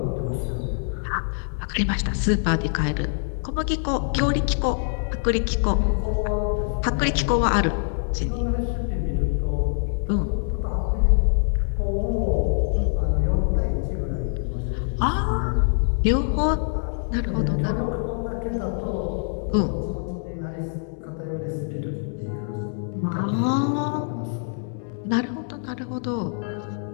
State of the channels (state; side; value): silent; right; digital silence